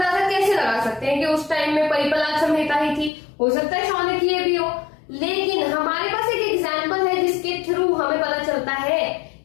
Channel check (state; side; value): drops out; right; at 3.1 s